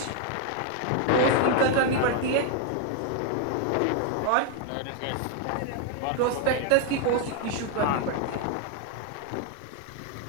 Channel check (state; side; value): different; both; correlation 0.01